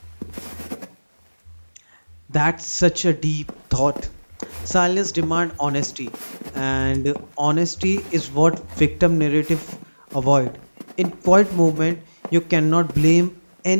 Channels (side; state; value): both; inverted; correlation -1.00